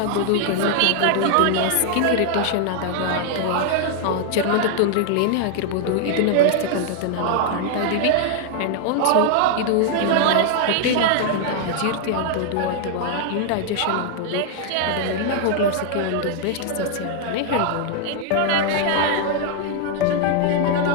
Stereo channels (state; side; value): different; both; correlation 0.00